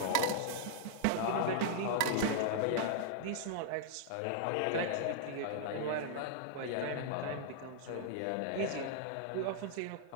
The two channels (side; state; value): both; different; correlation -0.01